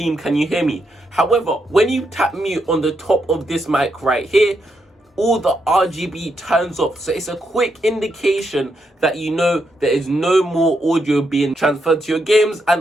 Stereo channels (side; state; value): both; normal; correlation 0.80